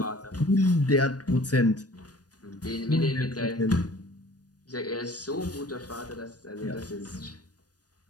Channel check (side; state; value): right; late; 0.69 ms